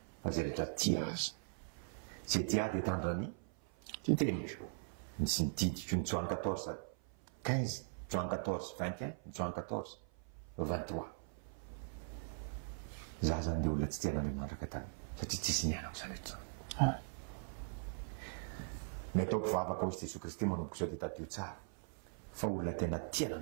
fa zay rehetra tia azy zay tia dia tandrany teny misy nididiko ny Joan 14:15 Joan 14:21 Joan 14:23 za zany dia olona tsy tian'Andriamanitra ka taloha satria tsisy nianako zany rehetra ny atao mpivavaka hozy Jesosy Kristy manomboka zao dia tadio tsara fa olona tena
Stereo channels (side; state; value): left; silent; 51 dB below the other